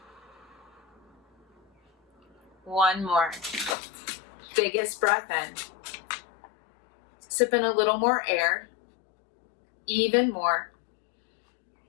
One more. Biggest breath in. Sip in a little more air. Even more.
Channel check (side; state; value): right; drops out; at 3.8 s